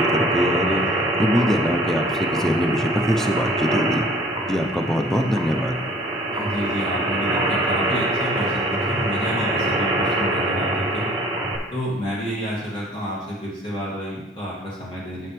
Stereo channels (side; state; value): both; normal; correlation 0.53